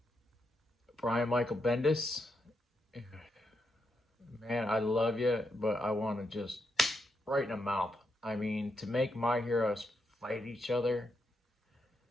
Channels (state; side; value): normal; both; correlation 0.82